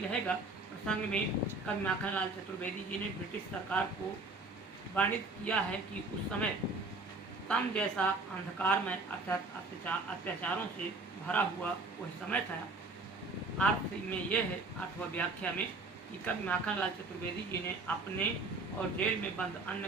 प्रसंग में कवि माखनलाल चतुर्वेदी जी ने ब्रिटिश सरकार को वर्णित किया है कि उस समय तम जैसा अंधकार में अत्याचारों से भरा हुआ वह समय था। अर्थ में यह है, अर्थ व व्याख्या में, कि कवि माखनलाल चतुर्वेदी जी ने अपने और जेल में बंद अन्य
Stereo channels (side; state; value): left; quieter; 3.4 dB